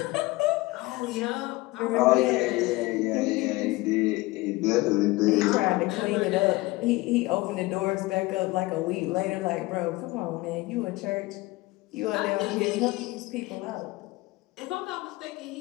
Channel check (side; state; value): right; quieter; 21.0 dB